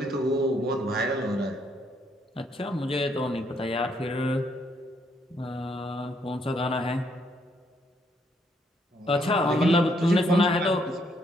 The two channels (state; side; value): normal; both; correlation 0.72